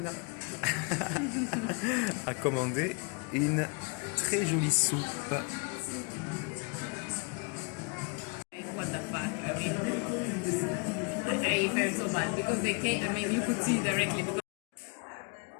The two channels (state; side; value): quieter; right; 33.8 dB